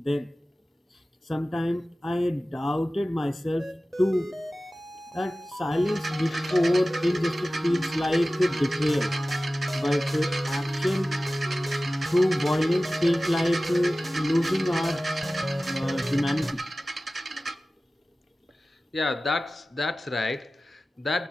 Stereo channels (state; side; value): normal; both; correlation 0.96